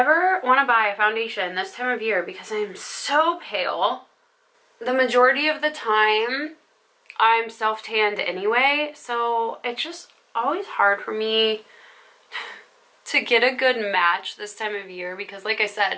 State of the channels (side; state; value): both; identical; correlation 1.00